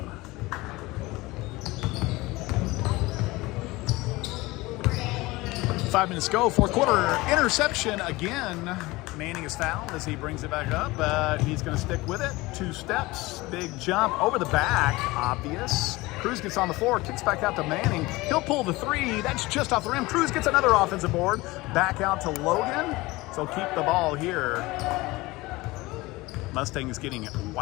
5 minutes go, fourth quarter. Interception again. Manning is fouled as he brings it back up, but he's going to stick with it. 2 steps, big jump over the back, obvious. Cruz gets on the floor, kicks back out to Manning. He'll pull the 3. That's just off the rim. Cruz gets another offensive board. Back out to Logan. So keep the ball here. Mustangs getting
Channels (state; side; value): quieter; right; 21.0 dB